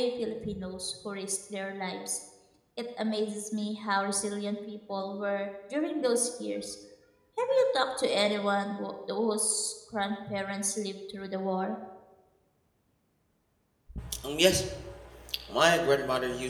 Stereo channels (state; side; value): identical; both; correlation 1.00